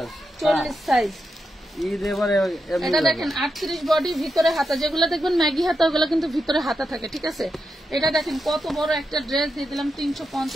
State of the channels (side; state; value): both; normal; correlation 0.87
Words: 40 সাইজ। ঈদ এবারে এটা দেখেন 38 বডি, ভিতরে হাতা, যেগুলো দেখবেন ম্যাগি হাতা ওগুলো কিন্তু ভিতরে হাতা থাকে, ঠিক আছে? এটা দেখেন কত বড় একটা ড্রেস দিয়ে দিলাম